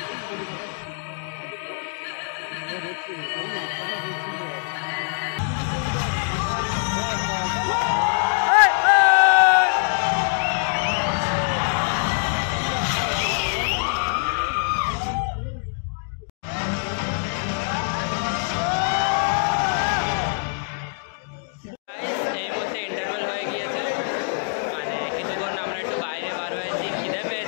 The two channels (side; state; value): right; silent; digital silence